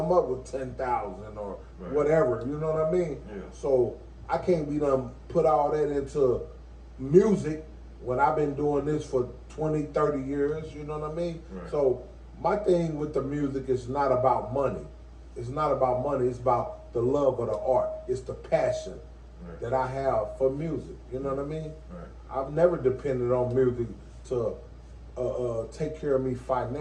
up with 10,000 or whatever, you know what I mean? Yeah. So I can't be done put all that into music when I've been doing this for 20, 30 years, you know what I mean? Right. So my thing with the music is not about money. It's not about money, it's about the love of the art. It's the passion that I have for music, you know what I mean? Right. I've never depended on music to take care of me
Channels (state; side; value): identical; both; correlation 1.00